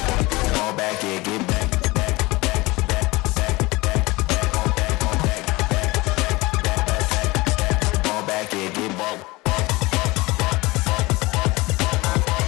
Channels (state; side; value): quieter; right; 22.4 dB